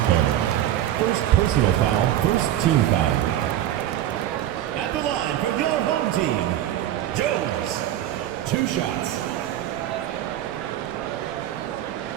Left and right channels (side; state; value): left; quieter; 12.3 dB